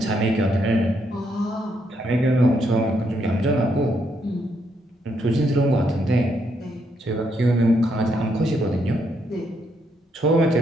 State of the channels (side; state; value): both; normal; correlation 0.76